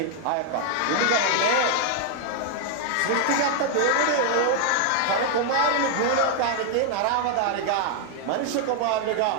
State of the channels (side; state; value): both; different; correlation 0.00